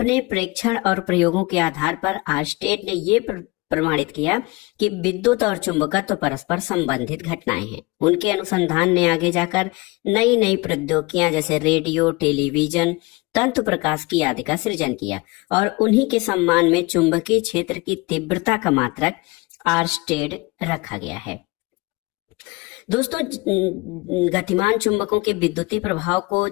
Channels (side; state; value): right; quieter; 24.3 dB